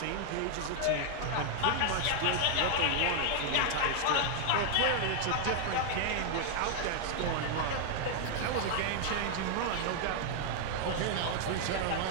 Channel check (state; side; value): different; both; correlation 0.00